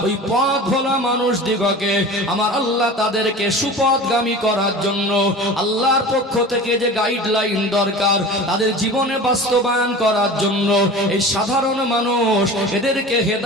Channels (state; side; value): normal; both; correlation 0.36